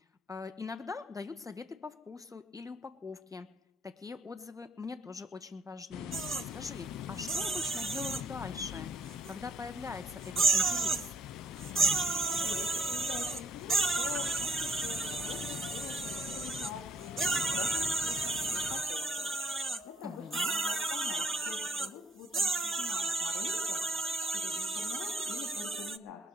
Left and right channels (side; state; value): both; normal; correlation 0.60